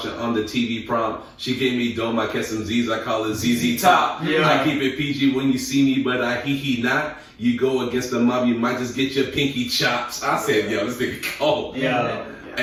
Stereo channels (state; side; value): identical; both; correlation 1.00